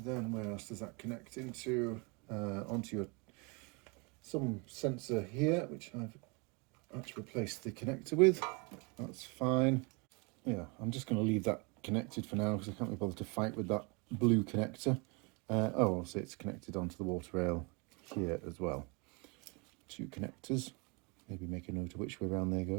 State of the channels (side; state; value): left; quieter; 30.9 dB